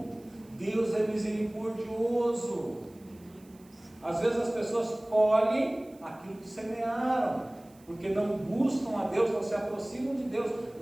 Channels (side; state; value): right; noise; hiss, 29 dB below the sound